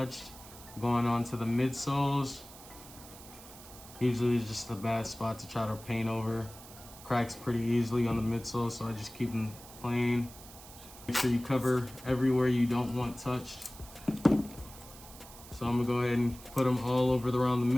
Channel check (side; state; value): right; noise; hiss, 18 dB below the sound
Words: Going on to the midsoles. Usually it's just a bad spot to try to paint over. Cracks pretty easily on the midsole, so I just keep them plain. Make sure you cover everywhere you don't want touched. So I'm gonna go ahead and put them all over around the